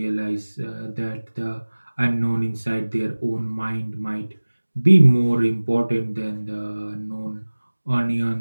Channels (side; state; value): both; inverted; correlation -1.00